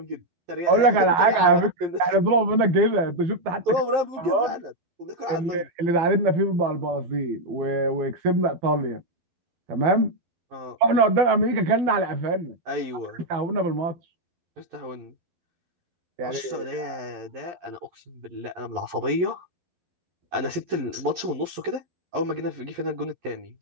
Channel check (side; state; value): left; late; 11 ms